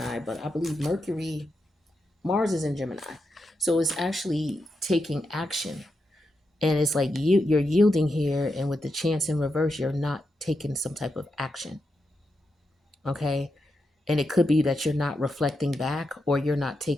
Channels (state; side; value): normal; both; correlation 0.86